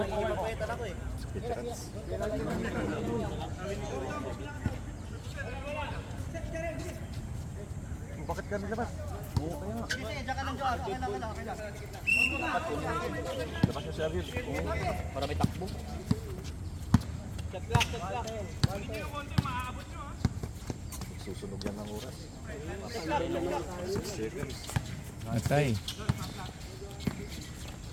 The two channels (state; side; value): identical; both; correlation 1.00